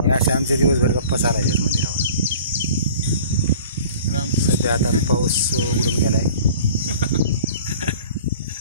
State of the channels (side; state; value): both; inverted; correlation -0.45